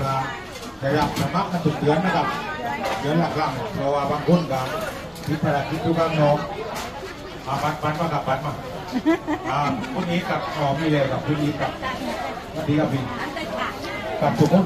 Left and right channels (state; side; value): identical; both; correlation 1.00